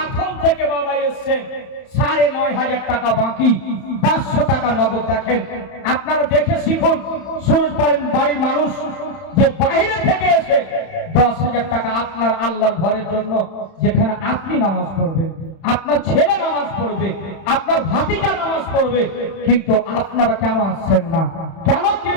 থেকে বাবা এসেছেন। 9,500 টাকা বাকি, 500 টাকা নগদ। দেখেন আপনারা দেখে শিখুন, সুরজ বাড়ির মানুষ যে বাইরে থেকে এসে 10,000 টাকা আপনার আল্লাহর ঘরের জন্য, যেখানে আপনি নামাজ পড়বেন, আপনার ছেলে নামাজ পড়বে, আপনার ভাতিজা নামাজ পড়বে, কিন্তু আপনারা কেন আসছেন না? কেন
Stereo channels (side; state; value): right; late; 31 ms